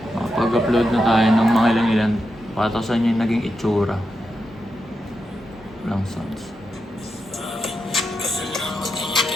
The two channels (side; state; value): both; normal; correlation 0.87